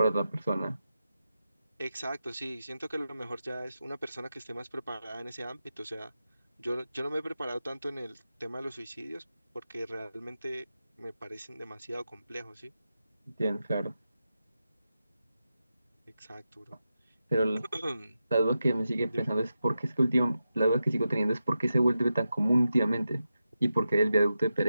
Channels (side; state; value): both; inverted; correlation -0.89